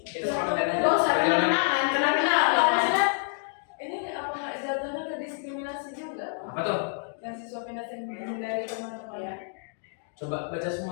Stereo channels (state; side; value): silent; right; 59 dB below the other